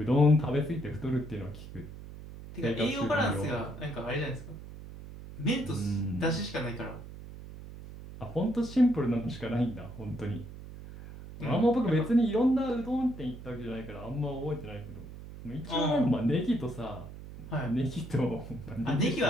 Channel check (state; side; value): noise; right; hum, 13 dB below the sound